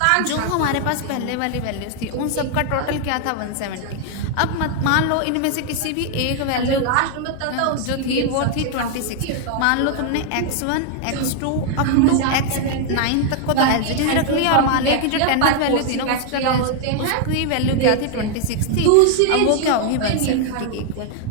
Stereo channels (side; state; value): both; different; correlation 0.00